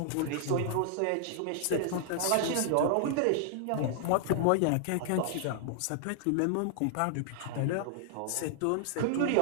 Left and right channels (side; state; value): both; different; correlation -0.01